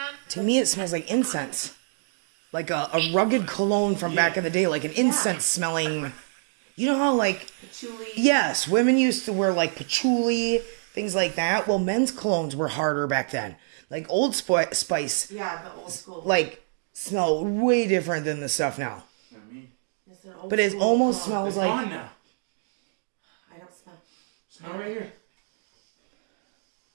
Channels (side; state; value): left; silent; digital silence